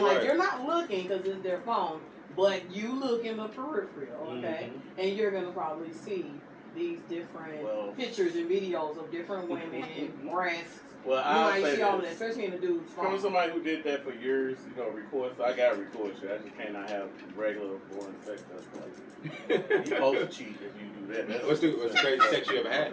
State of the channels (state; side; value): identical; both; correlation 1.00